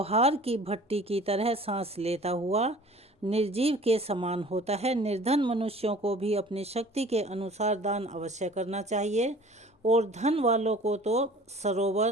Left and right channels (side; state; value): both; normal; correlation 0.47